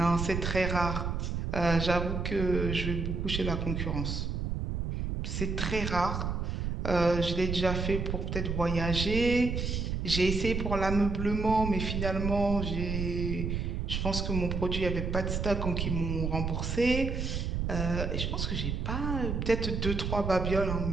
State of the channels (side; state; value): right; noise; rumble, 2 dB below the sound